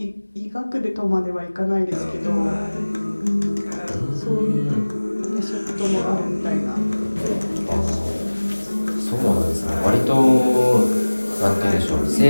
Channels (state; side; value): inverted; both; correlation -1.00